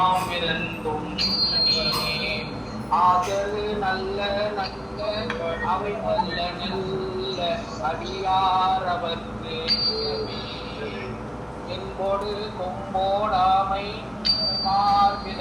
ஆதரு நல்ல நல்ல அவை நல்ல நல்ல அடியாரவர்க்கு என்போடு கொம்போடாமை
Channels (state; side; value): identical; both; correlation 1.00